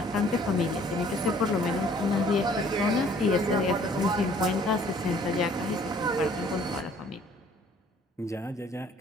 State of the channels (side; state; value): both; normal; correlation 0.57